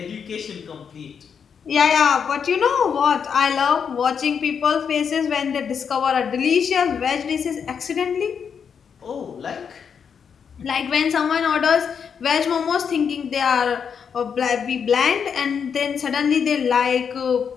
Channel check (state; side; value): quieter; right; 6.9 dB